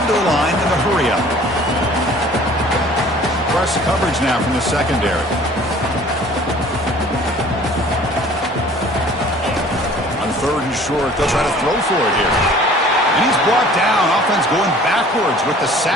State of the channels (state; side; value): normal; both; correlation 0.50